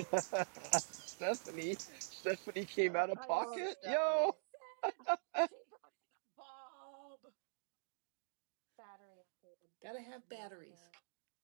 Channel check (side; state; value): left; silent; digital silence